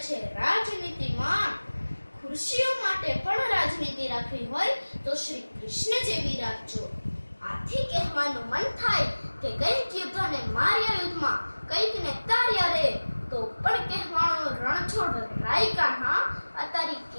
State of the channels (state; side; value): inverted; both; correlation -1.00